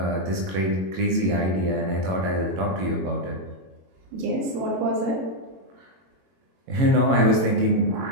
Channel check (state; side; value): late; left; 22 ms